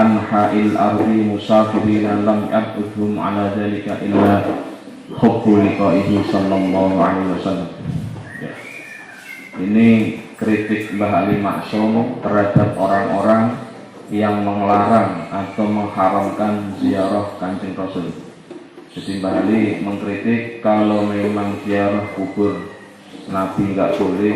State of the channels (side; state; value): both; identical; correlation 1.00